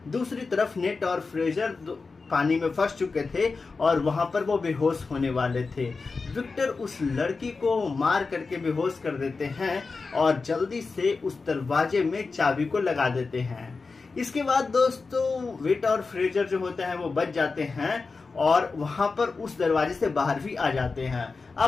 दूसरी तरफ नेट और फ्रेशर पानी में फंस चुके थे और वहां पर वो बेहोश होने वाले थे। विक्टर उस लड़की को मार करके बेहोश कर देते हैं और जल्दी से उस दरवाजे में चाबी को लगा देते हैं। इसके बाद दोस्तों वेट और फ्रेजर जो होते हैं वो बच जाते हैं और वहां पर उस दरवाजे से बाहर भी आ जाते हैं।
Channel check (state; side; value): quieter; right; 4.3 dB